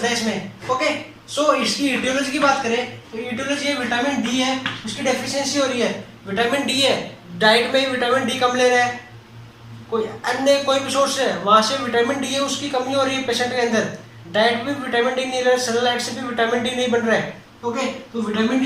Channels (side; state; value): both; identical; correlation 1.00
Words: है इसमें। ओके, सो इसकी ईटियोलॉजी की बात करें तो ईटियोलॉजी है विटामिन डी है उसकी डेफिशिएंसी हो रही है, विटामिन डी है डाइट में ही विटामिन डी कम ले रहा है, कोई अन्य कोई भी सोर्स है वहां से विटामिन डी है उसकी कमी हो रही है पेशेंट के अंदर, डाइट में विटामिन डी नहीं ले रहा है, सनलाइट से भी विटामिन डी नहीं बन रहा है। ओके, तो विटामिन